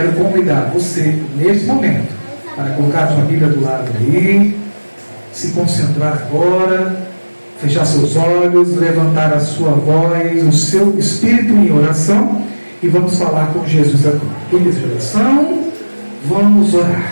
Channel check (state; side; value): inverted; both; correlation -1.00